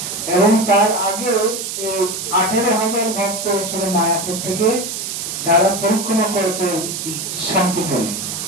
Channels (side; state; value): right; noise; hiss, 5 dB below the sound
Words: এবং তার আগে 18,000 ভক্ত এসেছিল মায়াপুর থেকে, তারা পরিক্রমা করেছে শান্তিপুরে,